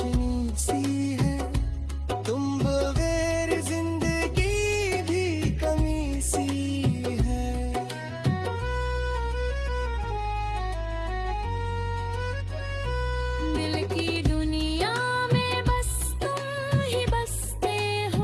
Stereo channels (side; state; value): both; identical; correlation 1.00